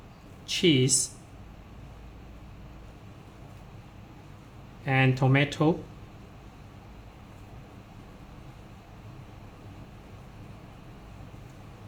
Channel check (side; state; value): both; identical; correlation 1.00